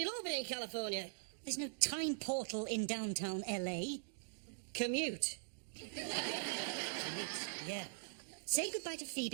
all be in California. There's no time portal in downtown LA. Commute. Yeah. Say goodbye to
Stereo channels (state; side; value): silent; left; digital silence